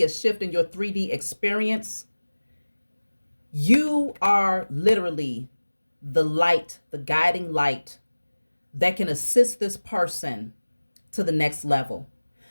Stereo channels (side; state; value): both; inverted; correlation -1.00